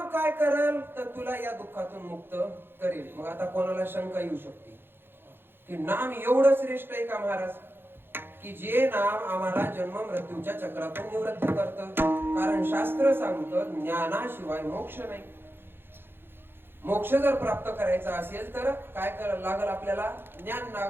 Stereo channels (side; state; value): left; late; 0.10 ms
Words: काय करेल तर तुला या दुःखातून मुक्त करेल. मग आता कोणाला शंका येऊ शकते की नाम एवढं श्रेष्ठ आहे का महाराज, की जे नाम आम्हाला जन्म मृत्यूच्या चक्रातून निवृत्त करतं? कारण शास्त्र सांगतं ज्ञानाशिवाय मोक्ष नाही. मोक्ष जर प्राप्त करायचा असेल तर काय करायला लागल? आपल्याला ज्ञान